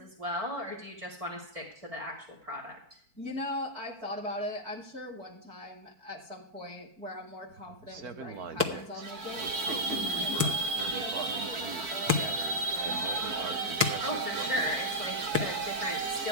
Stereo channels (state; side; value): late; left; 4.5 ms